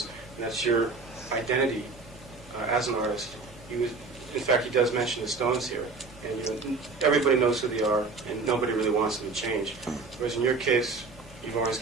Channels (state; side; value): quieter; left; 4.1 dB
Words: and that's your identity as an artist. In fact, he does mention the Stones here, and everybody knows who they are, and nobody really wants them to change. Whereas in your case, you've always